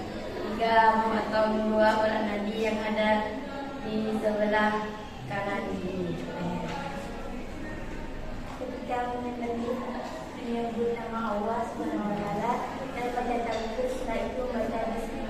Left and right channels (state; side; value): identical; both; correlation 1.00